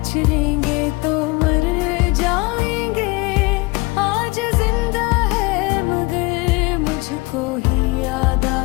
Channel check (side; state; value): right; quieter; 24.9 dB